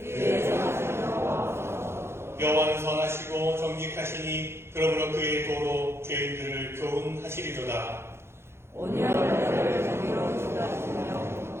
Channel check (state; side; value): late; left; 0.12 ms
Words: 여호와는 선하시고 정직하시니 그러므로 그의 도로 죄인들을 교훈하시리로다.